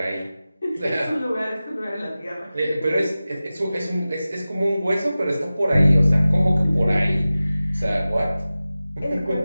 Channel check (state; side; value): inverted; both; correlation -0.96